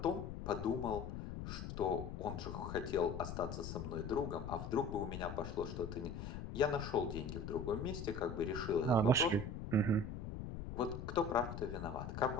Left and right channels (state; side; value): noise; left; rumble, 7 dB below the sound